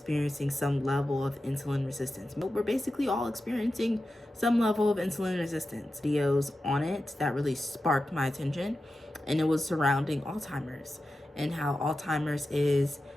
some level of insulin resistance. But we're basically all experiencing some level of insulin resistance. Videos on it that really sparked my attention, and it was surrounding Alzheimer's and how Alzheimer's is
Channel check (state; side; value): normal; both; correlation 0.92